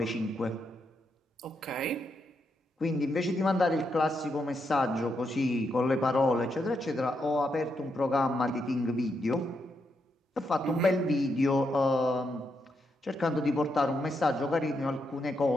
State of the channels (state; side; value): normal; both; correlation 0.81